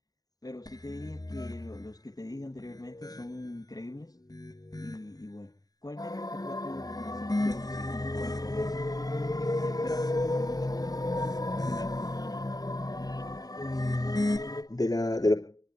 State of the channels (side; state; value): right; late; 0.18 ms